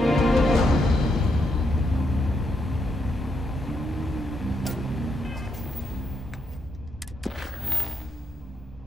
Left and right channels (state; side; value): normal; both; correlation 0.80